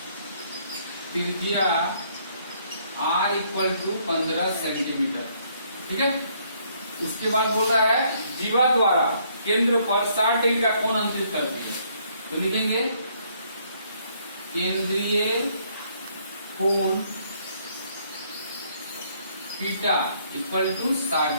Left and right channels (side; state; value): both; inverted; correlation -0.67